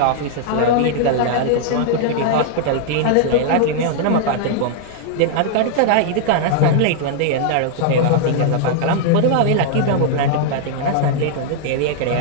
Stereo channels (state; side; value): different; both; correlation -0.01